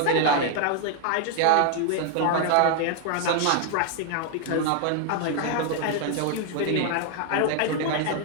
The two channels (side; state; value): both; different; correlation 0.00